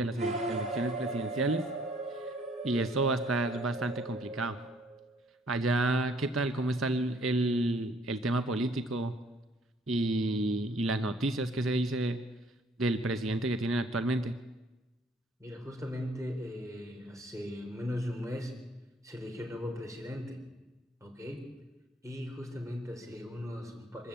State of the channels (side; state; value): both; normal; correlation 0.61